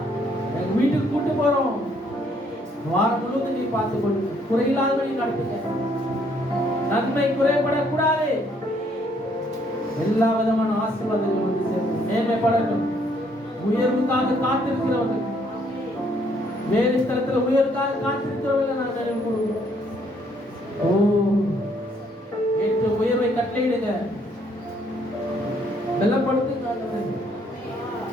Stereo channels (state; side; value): normal; both; correlation 0.67